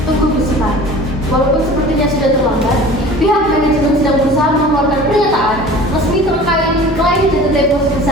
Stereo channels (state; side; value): normal; both; correlation 0.43